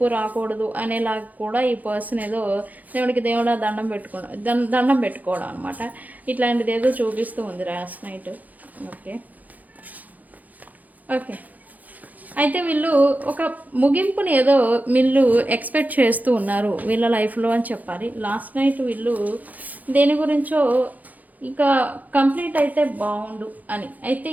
రాకూడదు అనేలాగా కూడా ఈ పర్సన్ ఏదో దేవుడా దండం పెట్టుకోవడం అనమాట. ఇట్లాంటిది ఏదో చూపిస్తూ ఉంది లాస్ట్ నైట్. ఓకే, అయితే వీళ్ళు ఒక ముగింపుని ఏదో వీళ్ళు ఎక్స్పెక్ట్ చేస్తూ ఉన్నారు వీళ్ళ లైఫ్లో అని చెప్పాలి. లాస్ట్ నైట్ వీళ్ళు దేని గురించో ఇక కంప్లీట్ అయితే బాగుండు అని. అయితే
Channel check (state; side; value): late; left; 0.080 ms